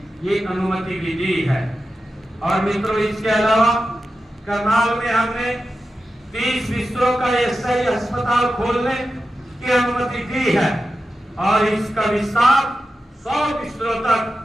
ये अनुमति भी दी है। और मित्रों, इसके अलावा करनाल में हमने 30 बिस्तरों का ईएसआई अस्पताल खोलने की अनुमति दी है और इसका विस्तार 100 बिस्तरों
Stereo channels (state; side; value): normal; both; correlation 0.91